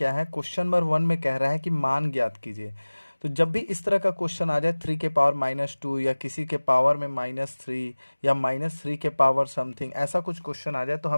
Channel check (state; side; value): inverted; both; correlation -1.00